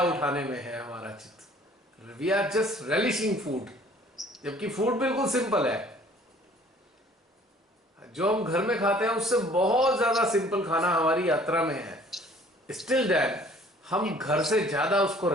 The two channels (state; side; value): normal; both; correlation 0.54